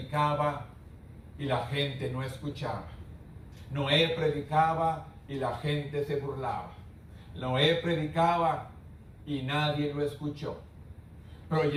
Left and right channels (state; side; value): identical; both; correlation 1.00